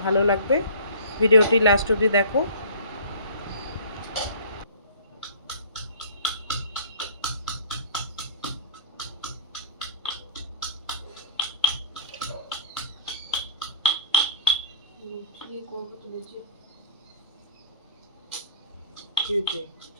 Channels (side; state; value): both; inverted; correlation -0.44